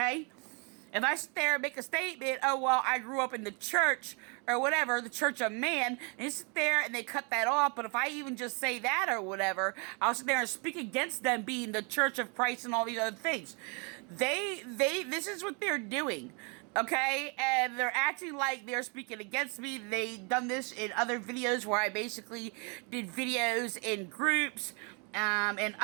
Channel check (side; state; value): left; quieter; 34.5 dB